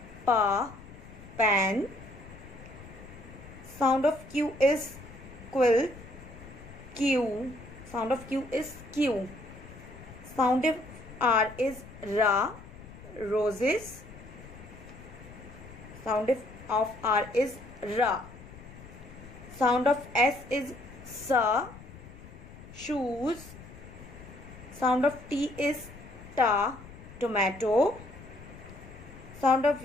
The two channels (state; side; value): noise; left; rumble, 17 dB below the sound